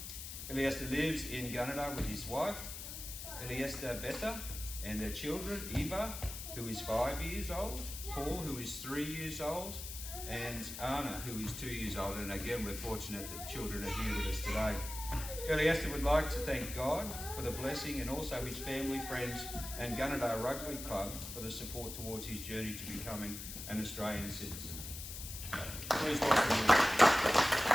Iliesta lives in Gunnedah with his wife, Iliesta Beta, and their children, Eva, who is 5 years old, Paul, who is 3 years old, and Anna, who is 2 years old. And again, we're fortunate that the children are here with us today. Iliesta would like to thank God for the blessing, and also his family, friends, and Gunnedah Rugby Club for the support towards his journey to becoming an Australian citizen. So, please welcome him.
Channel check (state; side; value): noise; left; hiss, 8 dB below the sound